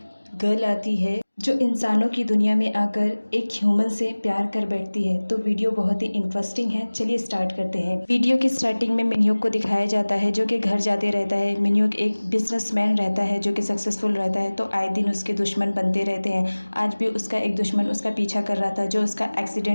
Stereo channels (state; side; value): inverted; both; correlation -1.00